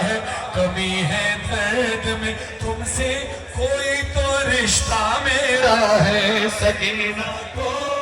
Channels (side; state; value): both; identical; correlation 1.00